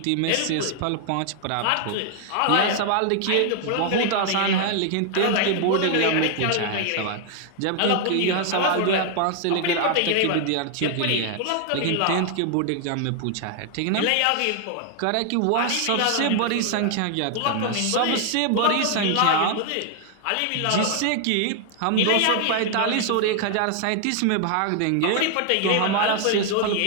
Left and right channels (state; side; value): different; both; correlation 0.00